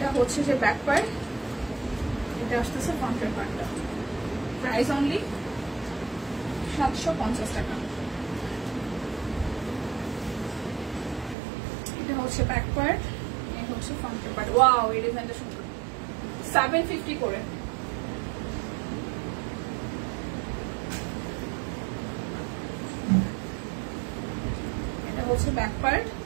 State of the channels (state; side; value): drops out; left; at 11.4 s